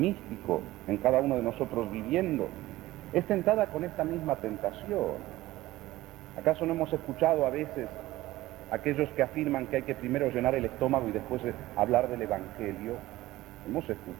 en cada uno de nosotros viviendo? Es tentada con esta misma tentación. ¿Acaso no hemos escuchado a veces aquellos que afirman que hay que primero llenar el estómago y después hablar del Evangelio? Hemos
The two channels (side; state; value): left; quieter; 17.1 dB